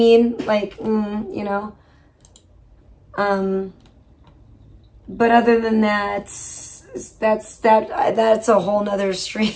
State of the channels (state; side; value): identical; both; correlation 1.00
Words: Like, but other than that, that's a whole nother